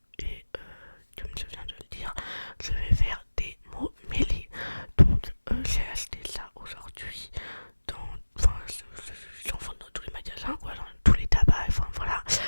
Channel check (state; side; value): inverted; both; correlation -1.00